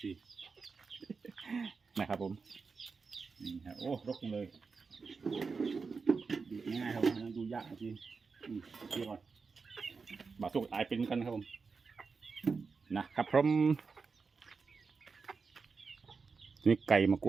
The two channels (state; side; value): quieter; left; 4.9 dB